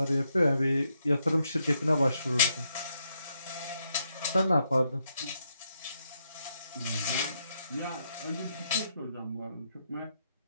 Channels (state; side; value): inverted; both; correlation -0.78